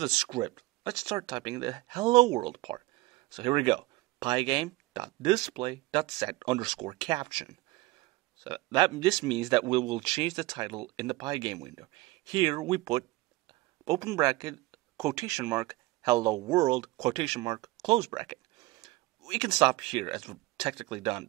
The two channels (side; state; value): left; quieter; 20.0 dB